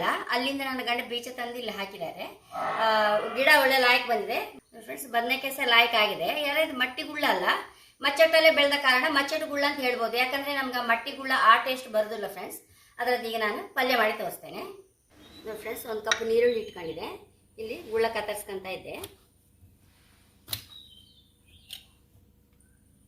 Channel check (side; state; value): both; identical; correlation 1.00